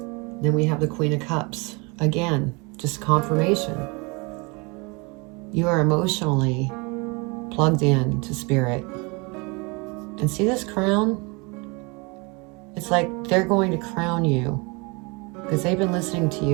Then we have the Queen of Cups. Again, just confirmation. You are emotionally plugged in to Spirit. And see this crown? It's like they're going to crown you. Because they've been listening to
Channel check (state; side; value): quieter; left; 29.0 dB